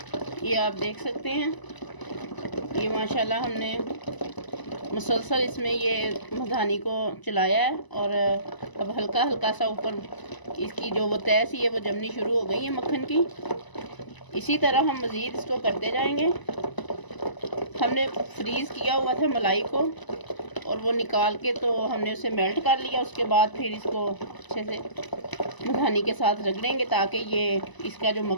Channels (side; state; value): right; late; 1.0 ms